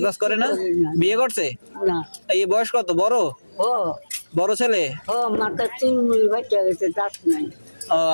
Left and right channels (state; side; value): inverted; both; correlation -1.00